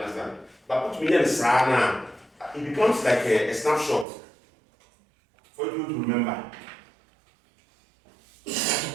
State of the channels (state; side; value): drops out; left; at 4.0 s